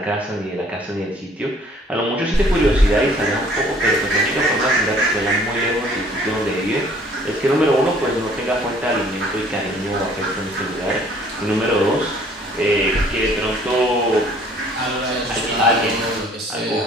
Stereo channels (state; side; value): normal; both; correlation 0.57